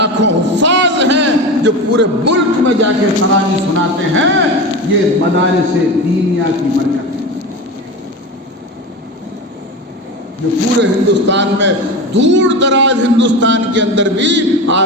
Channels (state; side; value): normal; both; correlation 0.26